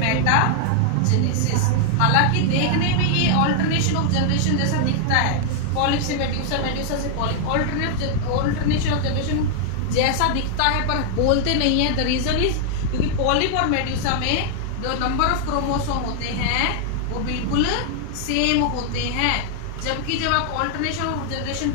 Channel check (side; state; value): both; different; correlation 0.00